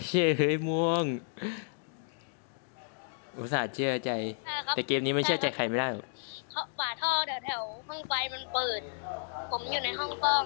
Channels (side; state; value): right; silent; digital silence